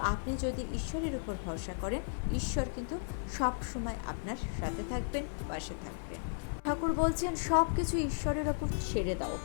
আপনি যদি ঈশ্বরের উপর ভরসা করেন, ঈশ্বর কিন্তু সব সময় আপনার সাথে থাকবেন, পাশে থাকবেন। ঠাকুর বলছেন সব কিছু ঈশ্বরের ওপর ছেড়ে দাও।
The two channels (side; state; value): right; silent; 55 dB below the other